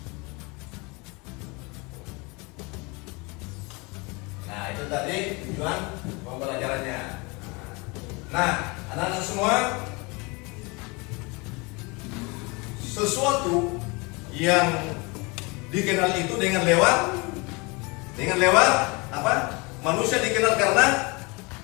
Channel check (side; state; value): right; quieter; 27.5 dB